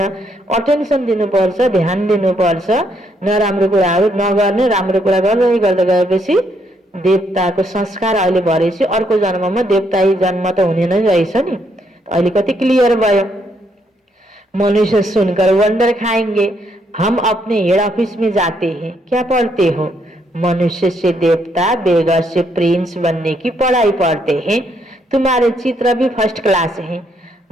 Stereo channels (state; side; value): normal; both; correlation 0.74